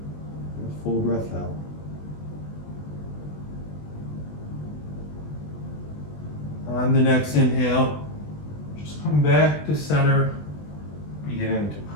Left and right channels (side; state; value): right; late; 20 ms